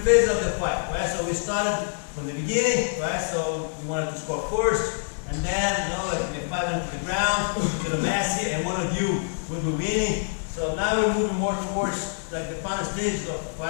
phases of the fight, right? So we started from the beginning, right? So we wanted to score first, and then, you know, like, I mean, 5 minutes to the ground, to the mass here, and one of you will be winning. So now we're moving more towards like the final stages of the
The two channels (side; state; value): right; silent; digital silence